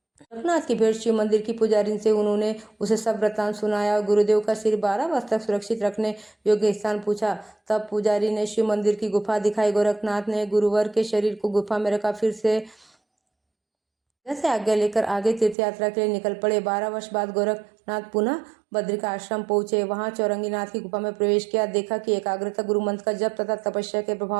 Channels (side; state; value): left; drops out; at 15.6 s